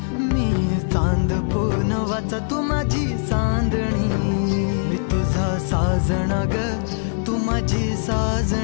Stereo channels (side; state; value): right; silent; digital silence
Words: मी चांद पूनवाचा तू माझी चांदणी मी तुझा साजण ग तू माझी